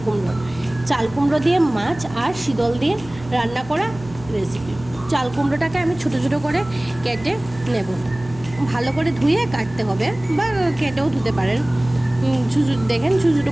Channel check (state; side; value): noise; right; hum, 17 dB below the sound